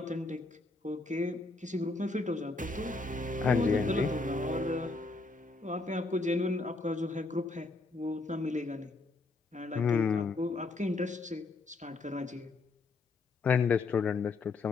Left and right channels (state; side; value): quieter; right; 3.5 dB